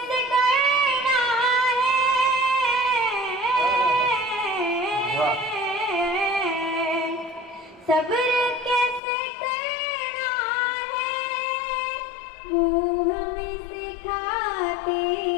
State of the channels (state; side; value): drops out; right; at 9.0 s